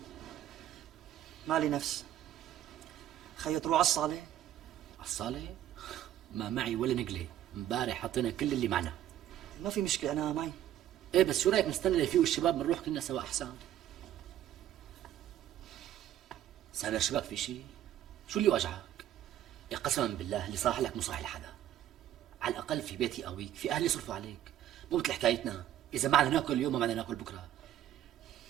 مالي نفس. خيو تروح على الصالة؟ على الصالة؟ ما معي ولا نقلة، امبارح حطينا كل اللي معنا. ما في مشكلة أنا معي. ايه بس شو رايك نستنى ليفيقوا الشباب بنروح كلنا سوا احسن؟ سامر شبك في شيء؟ شو اللي وجعك؟ يا قسما بالله اللي صاح لك مو صاح لحدا. على الاقل في بيتي قويك، في اهلي يصرفوا عليك، مو مثل حكايتنا، اذا ما بدنا ناكل اليوم ما بدنا ناكل بكره.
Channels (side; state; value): left; quieter; 12.0 dB